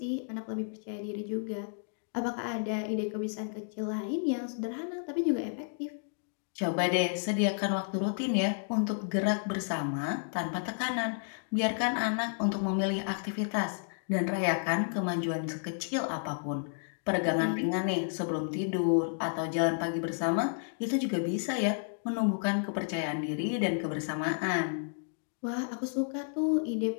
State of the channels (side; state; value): right; silent; digital silence